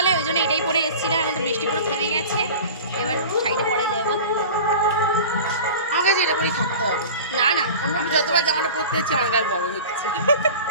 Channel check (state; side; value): inverted; both; correlation -0.36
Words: ওই জন্য এটাই পরে এসেছিলাম। এখন তো বৃষ্টি পুরো থেমে গেছে, এবার শাড়িটা পরেই যাবো। আমার কাছে এটা পরেই থাকতে হবে। না আমি যতবার জামাটা পরতে যাচ্ছি আমার গায়ে বড় হচ্ছে।